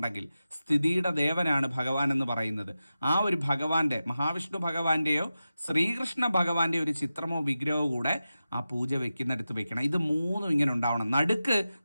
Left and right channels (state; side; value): inverted; both; correlation -0.93